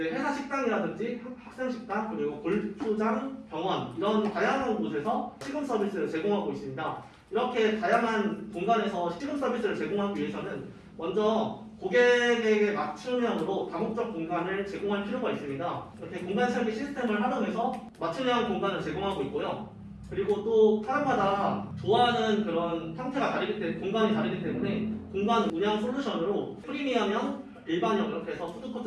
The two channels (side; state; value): both; identical; correlation 1.00